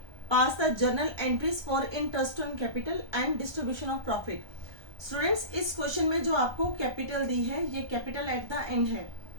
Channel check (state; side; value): late; left; 1.2 ms